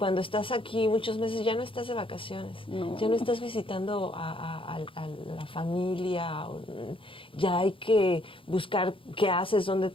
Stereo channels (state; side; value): late; right; 0.25 ms